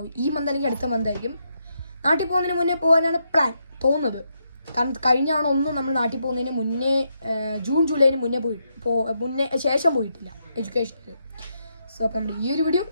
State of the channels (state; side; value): inverted; both; correlation -0.80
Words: ഈ മന്ത് അല്ലെങ്കിൽ അടുത്ത മന്തായിരിക്കും. നാട്ടിൽ പോകുന്നതിന് മുന്നേ പോകാനാണ് പ്ലാൻ തോന്നുന്നത്. കാരണം കഴിഞ്ഞ ഒന്നും നമ്മൾ നാട്ടിൽ പോകുന്നതിന് മുന്നേ ജൂൺ ജൂലൈന് മുന്നേ ശേഷം പോയിട്ടില്ല എഡ്യൂക്കേഷനിൽ. സോ അപ്പം നമ്മുടെ ഈ ഒരു വീഡിയോ